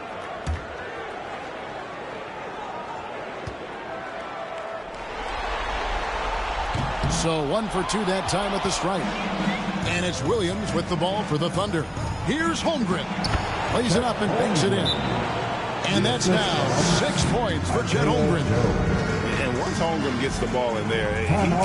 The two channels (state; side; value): identical; both; correlation 1.00